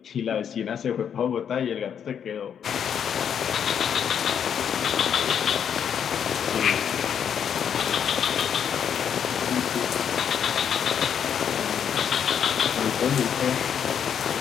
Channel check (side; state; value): right; quieter; 8.2 dB